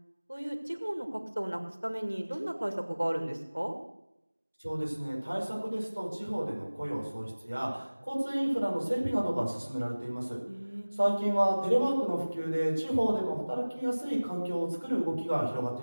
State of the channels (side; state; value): both; inverted; correlation -1.00